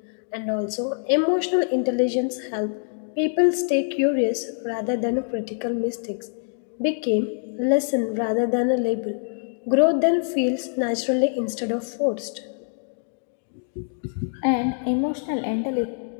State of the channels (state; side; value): silent; right; 62 dB below the other